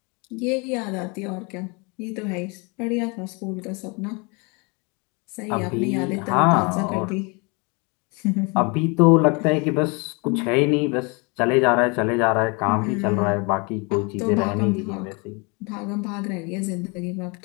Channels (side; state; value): right; quieter; 30.8 dB